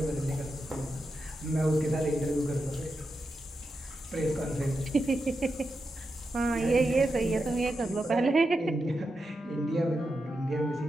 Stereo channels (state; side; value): normal; both; correlation 0.88